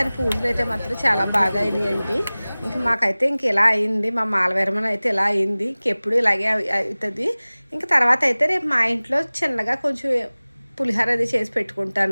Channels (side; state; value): both; inverted; correlation -0.99